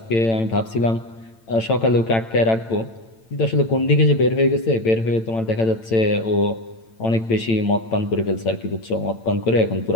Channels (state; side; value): late; right; 8.9 ms